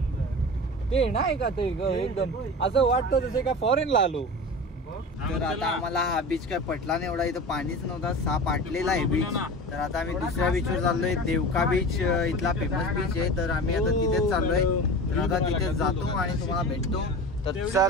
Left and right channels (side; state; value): both; normal; correlation 0.32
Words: ते नाही का ते एकदम असं वाटतं जसं का फॉरेनला आलो. तर आता आम्हाला हा बीच काय पटला नाही एवढा. इथं पाणीच नव्हता, साप आटलेला आहे बीच. तर आता आम्ही दुसऱ्या बीचवर चाललोय. देवका बीच इथला फेमस बीच आहे. तर आम्ही आता तिथेच चाललोय. तर आता तिथे जातो आणि तुम्हाला भेटतो. तर